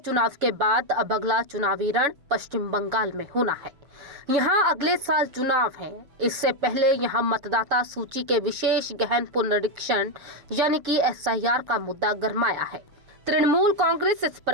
के बाद अब अगला चुनावी रण पश्चिम बंगाल में होना है। यहां अगले साल चुनाव है। इससे पहले यहां मतदाता सूची के विशेष गहन पुनरीक्षण यानी कि SIR का मुद्दा गरमाया है। तृणमूल कांग्रेस इस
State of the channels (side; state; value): left; late; 7.0 ms